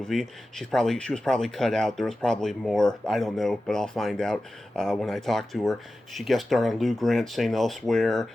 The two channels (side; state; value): both; normal; correlation 0.94